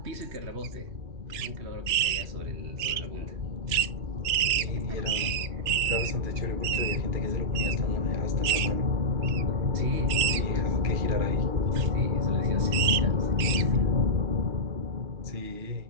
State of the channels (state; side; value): late; left; 3.3 ms